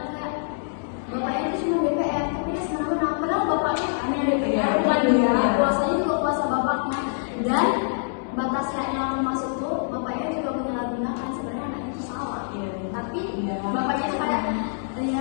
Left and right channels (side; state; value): right; silent; digital silence